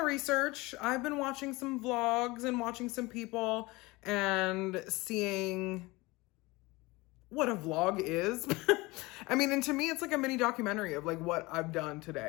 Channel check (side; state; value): right; quieter; 22.5 dB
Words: I've been watching some vlogs and watching some people and seeing what a vlog is. I mean, and to me, it's like a mini documentary of like what I've done